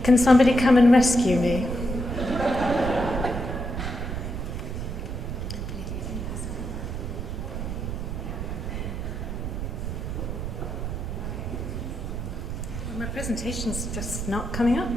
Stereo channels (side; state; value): right; noise; rumble, 4 dB below the sound